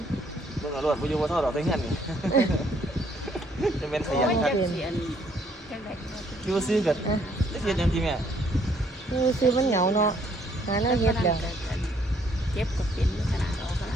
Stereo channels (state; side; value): normal; both; correlation 0.66